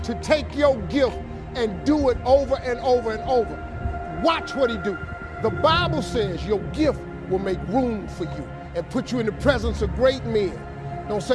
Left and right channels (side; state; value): both; identical; correlation 1.00